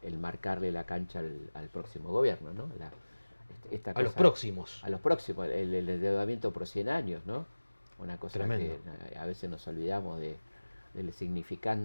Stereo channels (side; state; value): both; inverted; correlation -1.00